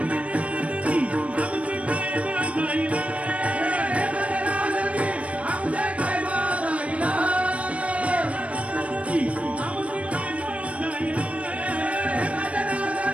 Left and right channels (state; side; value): late; left; 0.064 ms